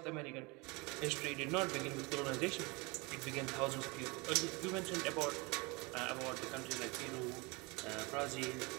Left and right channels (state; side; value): quieter; left; 26.8 dB